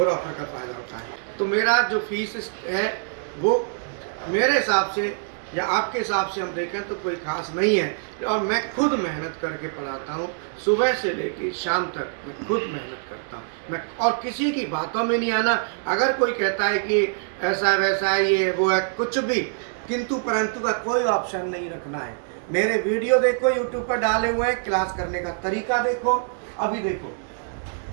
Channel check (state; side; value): silent; left; digital silence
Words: ऑफर का फ़ायदा उठाएं। तो मेरा जो फीस है वो मेरे हिसाब से या आपके हिसाब से हम देखें तो कोई खास नहीं है, और मैं खुद मेहनत करके पढ़ाता हूँ, सुबह से लेकर शाम तक मैं खुद मेहनत करता हूँ मैं, और किसी की बातों में नहीं आना। अगर कोई कहता है कि ऐसा वैसा है, ये वो है, कुछ भी किंतु परंतु का कोई ऑप्शन नहीं रखना है। मेरे वीडियो देखो, यूट्यूब पर डाले हुए हैं, क्लास करने का तरीका देखो। अभी देखो,